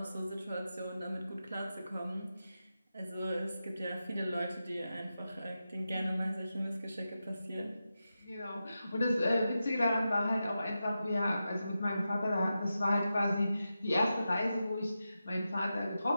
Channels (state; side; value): inverted; both; correlation -0.90